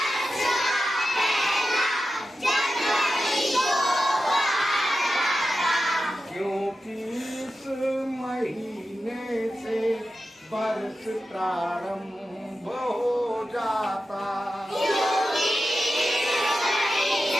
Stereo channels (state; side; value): normal; both; correlation 0.92